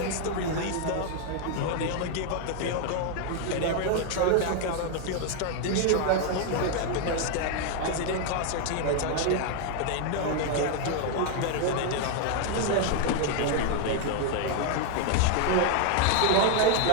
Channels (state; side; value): different; both; correlation 0.00